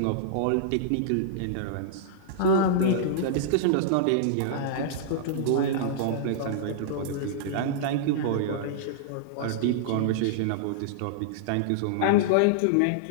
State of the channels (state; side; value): different; both; correlation -0.02